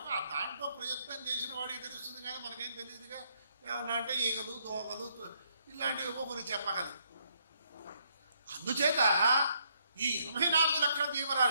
ఆ దాంట్లో ప్రయత్నం చేసిన వాడికి తెలుస్తుంది, కానీ మనకేం తెలియదుగా. ఏమన్నా అంటే ఈగలు, దోగలు ఇలాంటివి కొన్ని చెప్పగలం. అందుచేత ఈ 84 లక్షల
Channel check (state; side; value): inverted; both; correlation -0.72